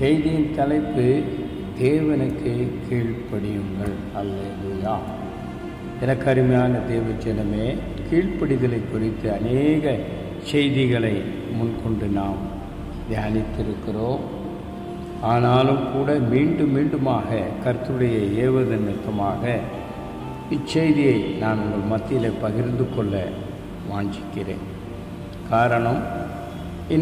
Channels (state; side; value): identical; both; correlation 1.00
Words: தலைப்பு தேவனுக்கு கீழ்ப்படியுங்கள். அல்லேலூயா. எனக்கு அருமையான தேவஜனமே, கீழ்ப்படிதலை குறித்து அநேக செய்திகளை முன்கொண்டு நாம் தியானித்திருக்கிறோம். ஆனாலும் கூட மீண்டுமாக கர்த்தருடைய ஏவுதல் நிமித்தமாக இச்செய்தியை நான் உங்கள் மத்தியில் பகிர்ந்து கொள்ள வாஞ்சிக்கிறேன். காரணம்,